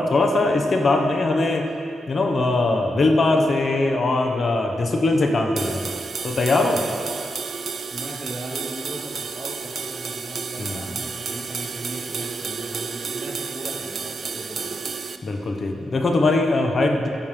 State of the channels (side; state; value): both; normal; correlation 0.85